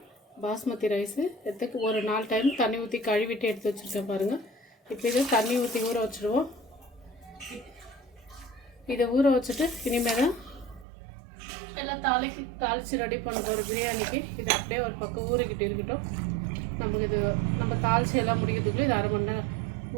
பாஸ்மதி ரைஸு ஒரு 4 டைம் தண்ணி ஊற்றி கழுவிட்டு எடுத்து வச்சுருக்கேன் பாருங்கள். இப்போ இதை தண்ணி ஊற்றி ஊற வச்சுடுவோம். இதை ஊற வச்சுட்டு இனிமேல் தான் எல்லாம் தாளித்து ரெடி பண்ண போகிறோம் பிரியாணிக்கு. இதை அப்படியே ஒரு பக்கம் ஊறிக்கிட்டு இருக்கட்டும். நம்ம தாளித்து எல்லாம் முடிக்கிறதுக்குள்ளே இது 1/2 மணி நேரம்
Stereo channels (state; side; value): drops out; left; at 10.9 s